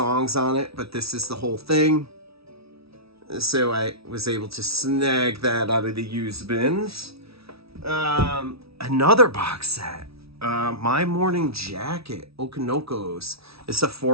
on it, but this is the whole thing. So I was able to snag that out of the used bins. Another box set. My Morning Jacket, Okanokos. It's a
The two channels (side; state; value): left; late; 0.76 ms